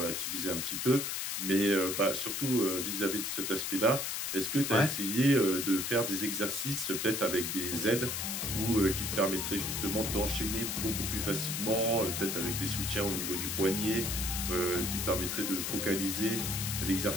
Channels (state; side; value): noise; left; hiss, 2 dB below the sound